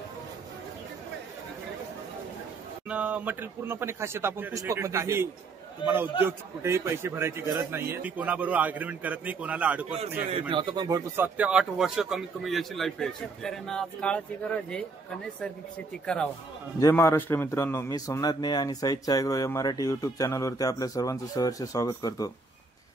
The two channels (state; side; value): quieter; left; 3.9 dB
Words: मटेरियल पूर्णपणे खासियत आपण पुष्पक मध्ये. तुम्हाला उद्योग कुठेही पैसे भरायची गरज नाहीये. मी कोणाबरोबर अग्रीमेंट करत नाही, कोणाला अडकवत नाही. आता पण भरपूर 7 ते 8 वर्ष कमीत कमी याची लाईफ आहे. शेतकऱ्यांना आज काळाची गरज आहे का नैसर्गिक शेती करावा. जय महाराष्ट्र मित्रांनो, मी सोमनाथ ने आणि साहित्य ॲग्रो या मराठी युट्यूब चॅनलवरती आपल्या सर्वांचं सहर्ष स्वागत करतो.